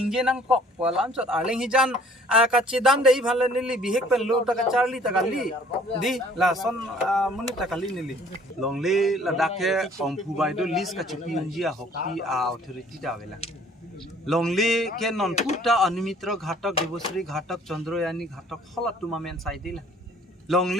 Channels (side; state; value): both; normal; correlation 0.56